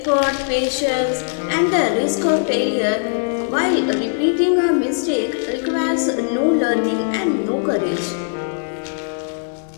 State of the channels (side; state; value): right; silent; 63 dB below the other